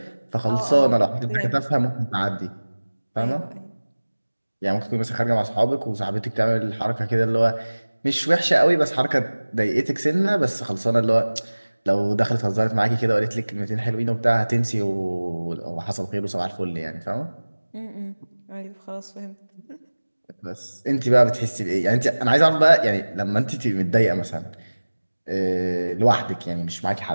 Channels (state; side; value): inverted; both; correlation -1.00